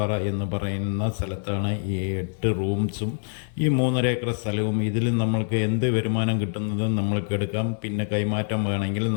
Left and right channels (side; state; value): right; silent; digital silence